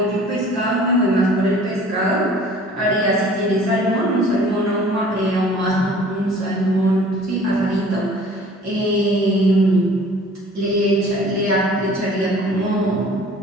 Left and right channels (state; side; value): normal; both; correlation 0.50